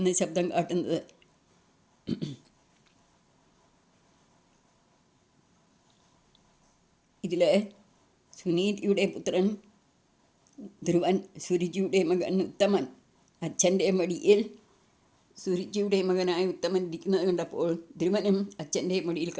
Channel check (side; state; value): both; identical; correlation 1.00